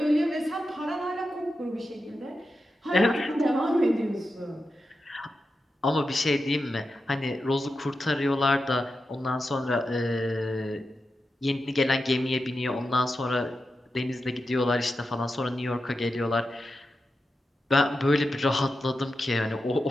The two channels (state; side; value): normal; both; correlation 0.90